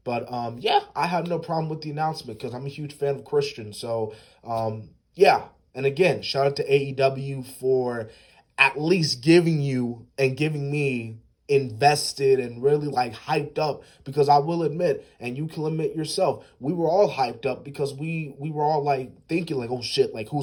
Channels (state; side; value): identical; both; correlation 1.00